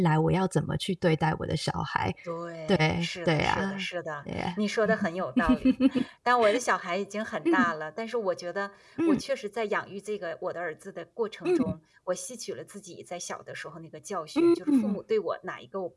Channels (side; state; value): both; identical; correlation 1.00